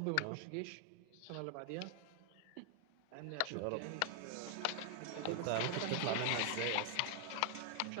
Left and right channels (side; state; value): both; different; correlation 0.00